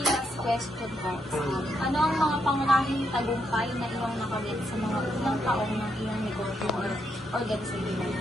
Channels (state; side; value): normal; both; correlation 0.79